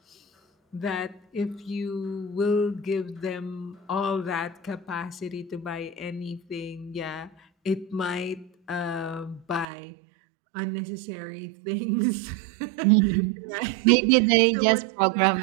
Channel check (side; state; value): left; drops out; at 9.7 s